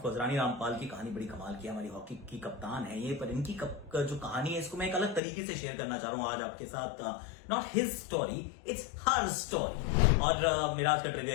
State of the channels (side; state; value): right; drops out; at 5.2 s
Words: कोर्स रानी रामपाल की कहानी बड़ी कमाल की है, हमारी हॉकी की कप्तान है ये, पर इनकी जो कहानी है इसको मैं एक अलग तरीके से शेयर करना चाह रहा हूं आज आपके साथ। Not his story, it's her story. और मेरा आज का ट्रिविया